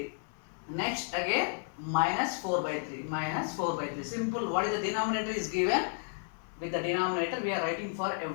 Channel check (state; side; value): silent; right; 56 dB below the other